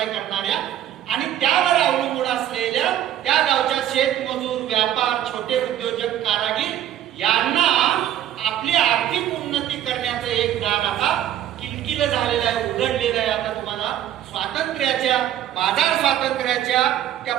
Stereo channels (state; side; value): quieter; left; 11.6 dB